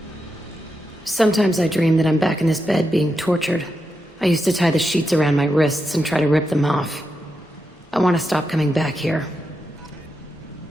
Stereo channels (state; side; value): normal; both; correlation 0.86